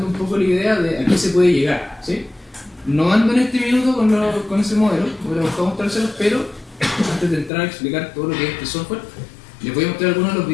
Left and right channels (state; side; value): drops out; right; at 7.5 s